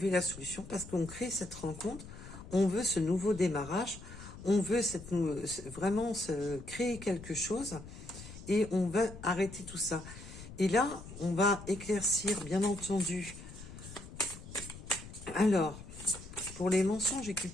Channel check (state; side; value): noise; left; rumble, 14 dB below the sound